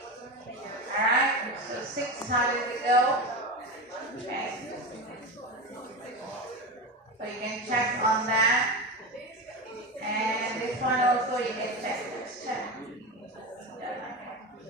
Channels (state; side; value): normal; both; correlation 0.21